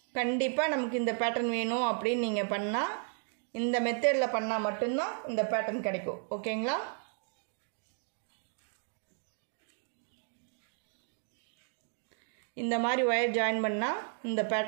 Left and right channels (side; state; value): left; silent; 55 dB below the other